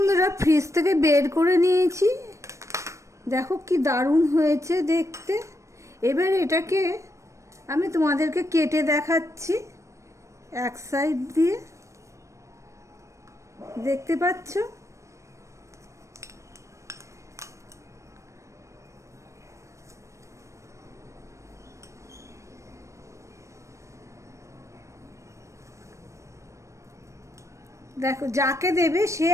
ফ্রিজ থেকে বের করে নিয়েছি, দেখো কি দারুণ হয়েছে দেখতে। এবার এটাকে আমি তোমাদেরকে কেটে দেখাচ্ছি এক সাইড দিয়ে, দেখতে পাচ্ছ। দেখো, যাকে দেবে সে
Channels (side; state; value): left; late; 0.15 ms